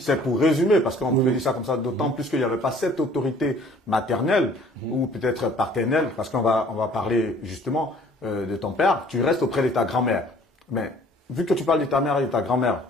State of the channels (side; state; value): both; normal; correlation 0.54